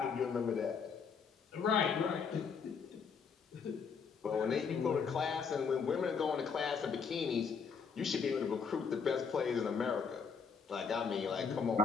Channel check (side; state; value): right; quieter; 5.9 dB